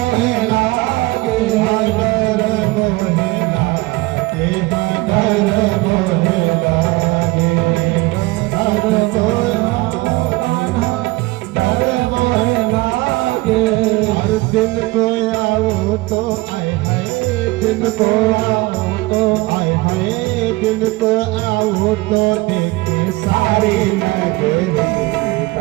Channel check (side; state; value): left; quieter; 21.4 dB